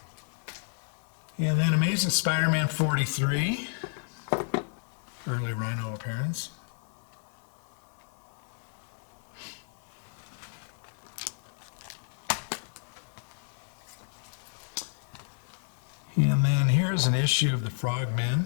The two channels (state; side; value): silent; right; digital silence